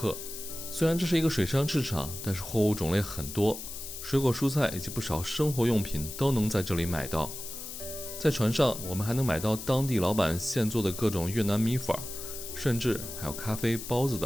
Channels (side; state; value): left; noise; hiss, 9 dB below the sound